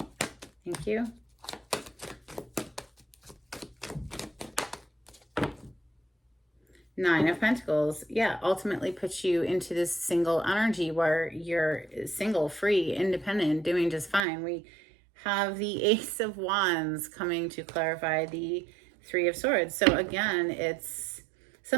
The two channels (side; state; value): left; drops out; at 14.2 s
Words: Thank you. Nine of Pentacles, yeah, ultimately puts you into this single energy where you're single, free, independent, doing just fine. We have the Ace of Wands coming to clarify the Three of Swords. So again, it's